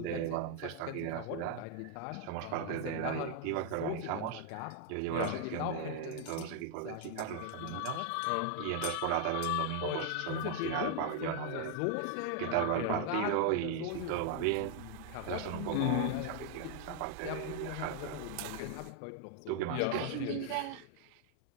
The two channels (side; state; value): both; different; correlation 0.00